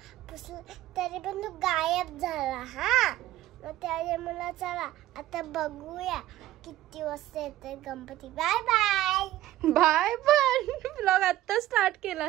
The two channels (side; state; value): left; quieter; 14.6 dB